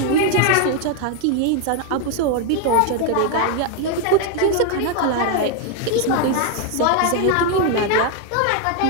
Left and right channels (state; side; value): different; both; correlation 0.01